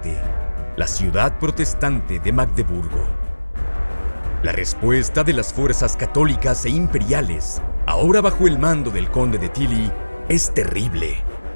la ciudad protestante de Magdeburgo. La respuesta de las fuerzas católicas e imperiales, ahora bajo el mando del conde de Tilly, es terrible.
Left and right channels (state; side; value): inverted; both; correlation -1.00